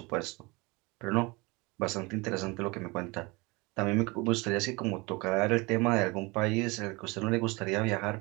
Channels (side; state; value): left; quieter; 25.5 dB